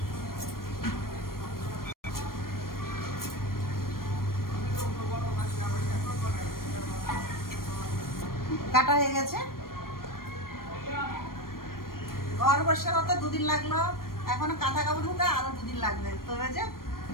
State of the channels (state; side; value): late; right; 0.92 ms